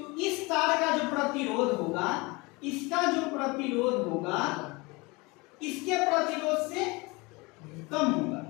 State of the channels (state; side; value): quieter; right; 25.3 dB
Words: इस तार का जो प्रतिरोध होगा, इसका जो प्रतिरोध होगा इसके प्रतिरोध से कम होगा।